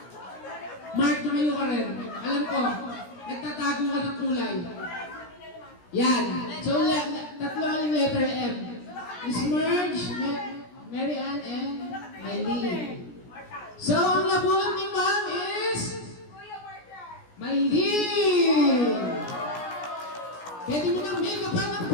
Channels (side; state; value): right; late; 17 ms